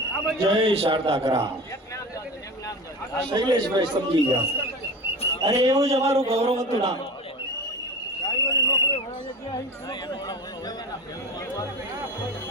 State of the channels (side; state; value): both; normal; correlation 0.33